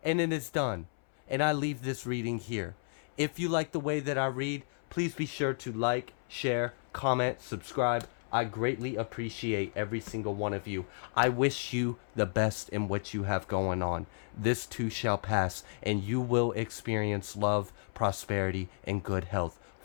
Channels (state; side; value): silent; right; 56 dB below the other